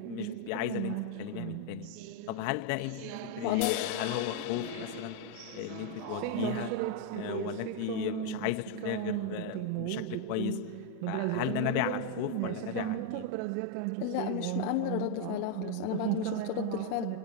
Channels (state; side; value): different; both; correlation 0.01